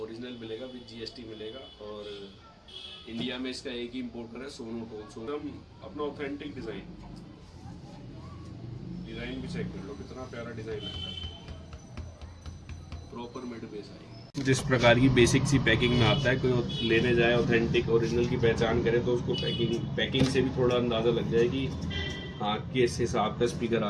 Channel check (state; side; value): identical; both; correlation 1.00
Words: ओरिजिनल मिलेगा विद GST मिलेगा। और इंडिया में इसका एक ही इम्पोर्टर है, सोनोटोन। अपना ऑथेंटिक डिज़ाइन भी चेक कर लो, कितना प्यारा डिज़ाइन लगता है। प्रॉपर मिड बेस आएगी। जिस प्रकार की बेसिक सी पैकिंग में आता है, कोई लेने जाए ऑथेंटिक ओरिजिनल की पहचान करे तो उसको पैकिंग से भी थोड़ा अंदाज़ा लग जाए कि हाँ किस हिसाब का स्पीकर